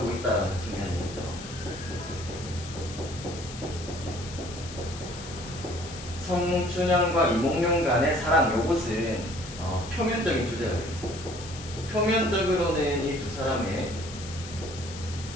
있다는 측면이 있죠. 성춘향과 이몽룡 간의 사랑, 요것은 표면적인 주제가 되겠습니다. 표면적으로는 이 두 사람의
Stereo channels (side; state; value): left; noise; hiss, 13 dB below the sound